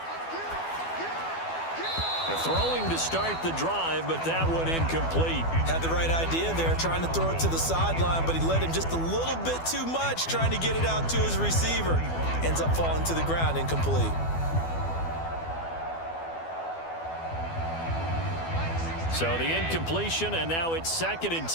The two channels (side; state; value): right; late; 12 ms